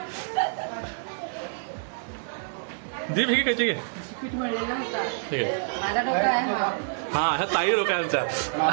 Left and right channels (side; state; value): left; silent; digital silence